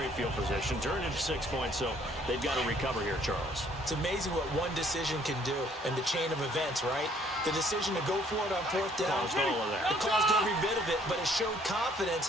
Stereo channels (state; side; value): normal; both; correlation 0.62